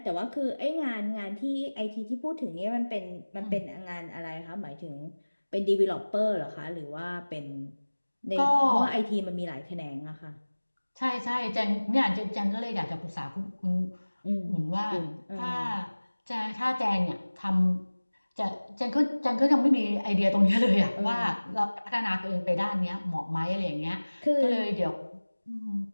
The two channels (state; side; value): inverted; both; correlation -1.00